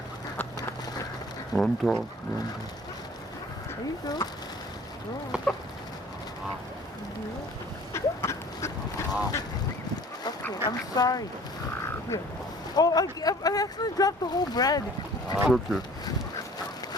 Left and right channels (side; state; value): both; normal; correlation 0.49